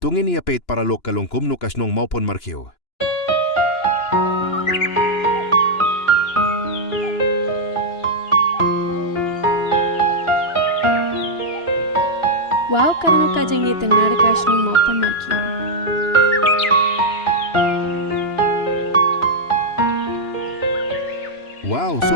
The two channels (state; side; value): late; right; 2.9 ms